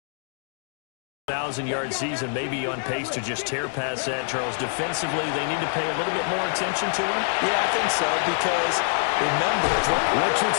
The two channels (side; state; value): right; silent; digital silence